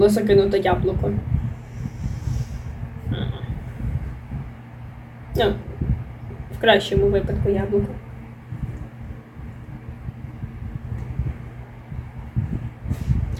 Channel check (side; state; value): both; identical; correlation 1.00